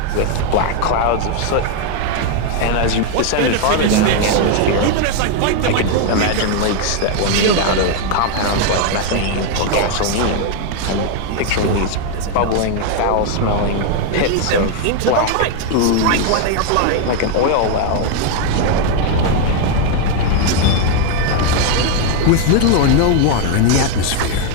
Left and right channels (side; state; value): both; different; correlation 0.01